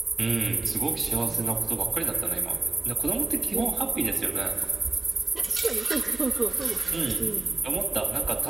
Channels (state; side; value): quieter; left; 3.3 dB